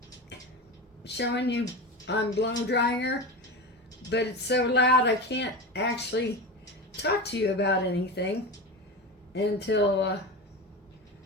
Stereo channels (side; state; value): both; normal; correlation 0.24